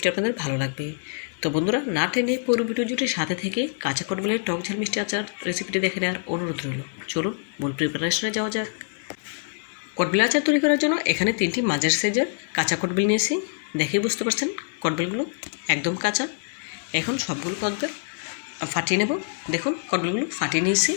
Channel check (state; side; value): silent; right; digital silence